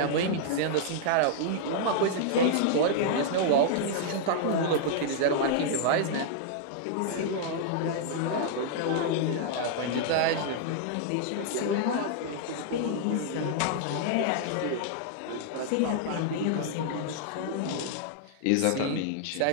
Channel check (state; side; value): different; both; correlation -0.01